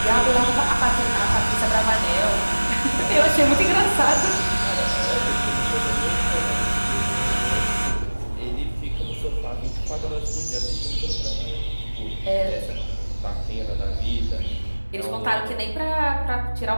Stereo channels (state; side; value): inverted; both; correlation -1.00